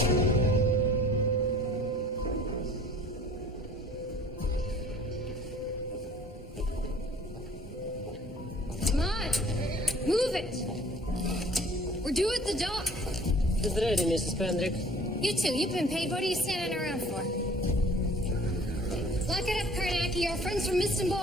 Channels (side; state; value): both; normal; correlation 0.51